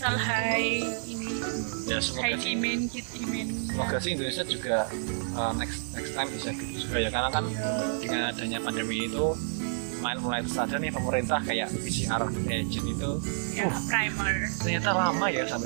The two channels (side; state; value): left; silent; digital silence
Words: high ini, Ya semoga high sih, demand, kit demand. semoga sih Indonesia juga next time bisa gitu juga ya, karena kan dengan adanya pandemi itu mulai sadar nih pemerintah kayak PCR agent itu Ya, primer. ternyata lama ya